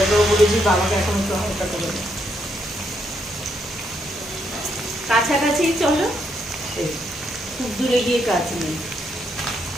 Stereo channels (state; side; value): normal; both; correlation 0.76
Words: বলেছি বাবাকে এখন একটু হালকা করে দাও। কাছাকাছি চলো, খুব দূরে গিয়ে কাজ নেই।